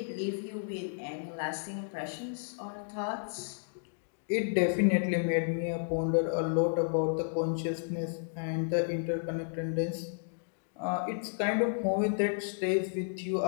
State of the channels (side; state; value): right; silent; digital silence